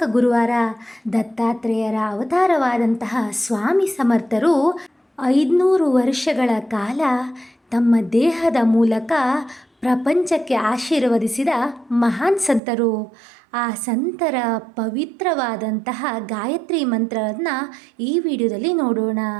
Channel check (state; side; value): drops out; left; at 12.6 s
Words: ಗುರುವಾರ. ದತ್ತಾತ್ರೇಯರ ಅವತಾರವಾದಂತಹ ಸ್ವಾಮಿ ಸಮರ್ಥರು 500 ವರ್ಷಗಳ ಕಾಲ ತಮ್ಮ ದೇಹದ ಮೂಲಕ ಪ್ರಪಂಚಕ್ಕೆ ಆಶೀರ್ವದಿಸಿದ ಮಹಾನ್ ಸಂತರು. ಆ ಸಂತರ ಪವಿತ್ರವಾದಂತಹ ಗಾಯತ್ರಿ ಮಂತ್ರವನ್ನು ಈ ವಿಡಿಯೋದಲ್ಲಿ ನೋಡೋಣ.